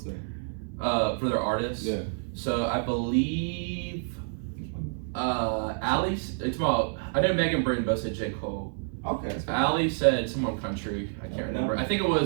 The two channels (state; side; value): silent; left; 55 dB below the other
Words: sing? for their artists? Yeah. So I believe Allie. It's about. I know Megan Britton both said J. Cole. Okay. Allie said someone country. I can't remember. I think it